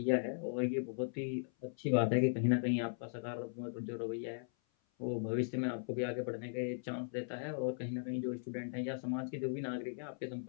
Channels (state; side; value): silent; right; 52 dB below the other